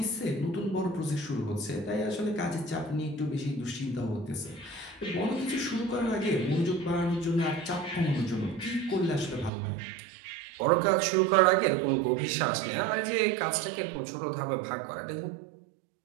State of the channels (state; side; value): drops out; left; at 9.5 s